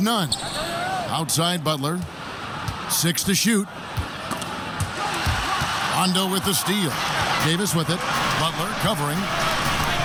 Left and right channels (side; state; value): both; identical; correlation 1.00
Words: Outside Butler. 6 to shoot. Rondo with the steal. Davis with it. Butler covering.